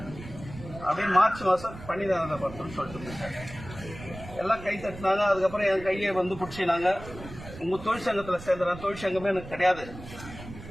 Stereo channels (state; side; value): noise; right; rumble, 14 dB below the sound